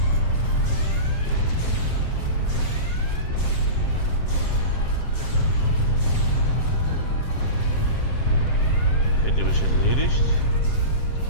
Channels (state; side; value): late; right; 7.6 ms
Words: Okay, die habe ich erledigt.